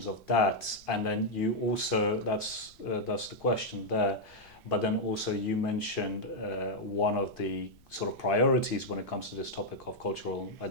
of that? And then you also, that's the question there, but then also you mentioned one of the sort of priorities when it comes to this topic of cultural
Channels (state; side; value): noise; left; rumble, 29 dB below the sound